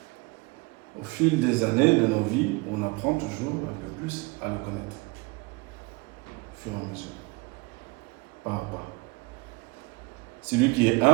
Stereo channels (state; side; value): quieter; left; 25.7 dB